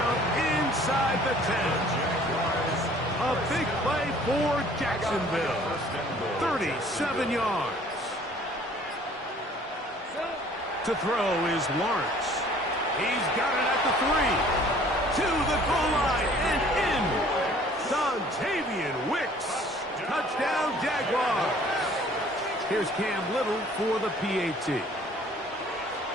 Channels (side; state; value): both; normal; correlation 0.54